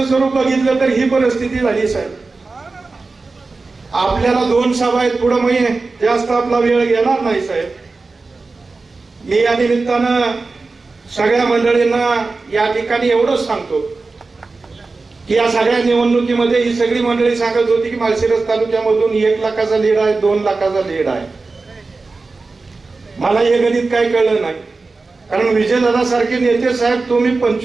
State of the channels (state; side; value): quieter; left; 3.8 dB